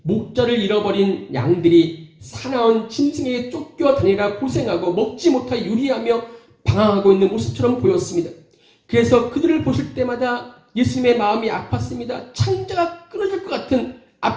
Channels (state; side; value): identical; both; correlation 1.00